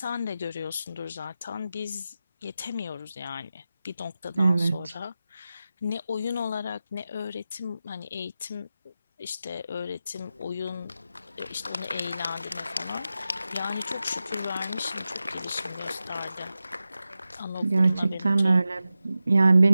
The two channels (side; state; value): both; inverted; correlation -0.93